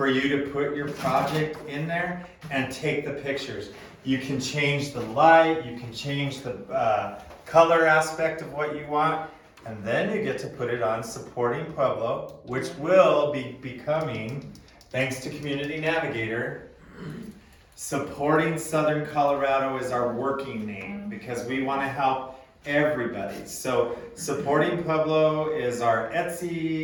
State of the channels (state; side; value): identical; both; correlation 1.00